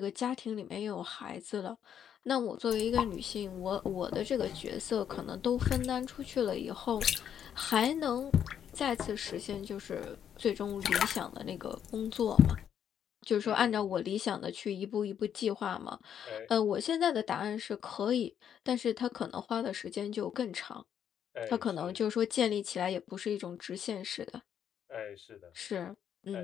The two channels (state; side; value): quieter; right; 9.0 dB